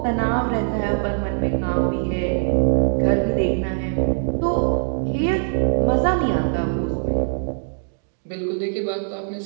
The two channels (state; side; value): silent; left; digital silence